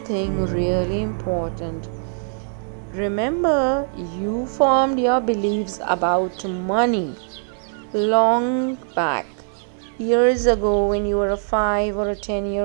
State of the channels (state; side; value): silent; left; 64 dB below the other